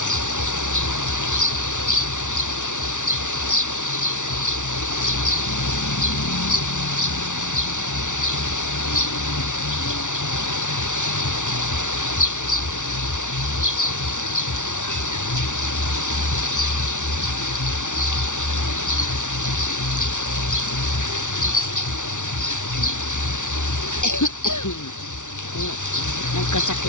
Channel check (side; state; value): right; late; 0.86 ms